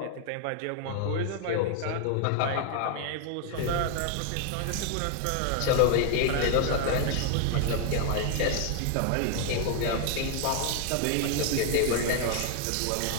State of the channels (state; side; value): different; both; correlation 0.00